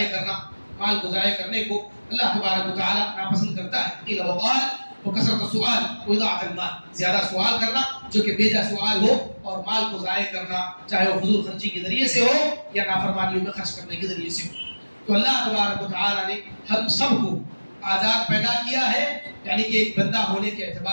کرنے کو اللہ تبارک و تعالیٰ ناپسند کرتا ہے. قیل و قال وکثرت السؤال واضاعة المال، زیادہ سوال کرنا جو کہ بیجا سوال ہو، اور مال کو ضائع کرنا چاہے وہ فضول خرچی کے ذریعے سے ہو یا نافرمانیوں میں خرچ کرنے کے ذریعے سے ہو۔ تو اللہ تبارک و تعالیٰ نے ہم سب کو آزاد پیدا کیا ہے، یعنی کہ ایک بندہ ہونے کے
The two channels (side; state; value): both; inverted; correlation -1.00